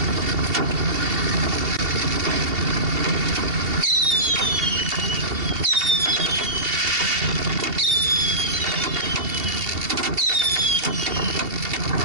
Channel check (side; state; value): left; late; 2.7 ms